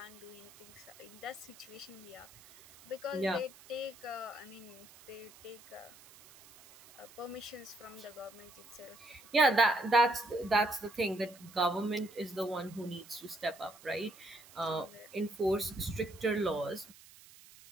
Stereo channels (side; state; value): right; noise; hiss, 21 dB below the sound